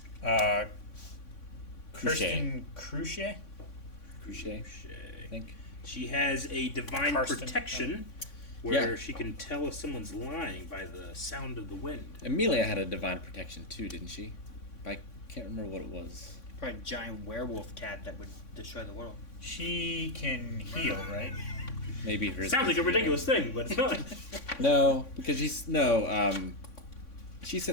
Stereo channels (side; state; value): right; late; 3.6 ms